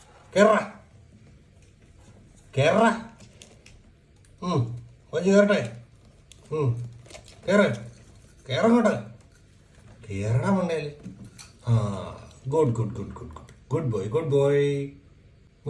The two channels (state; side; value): identical; both; correlation 1.00